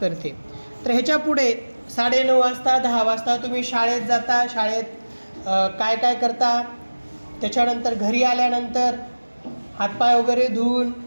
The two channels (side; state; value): both; inverted; correlation -1.00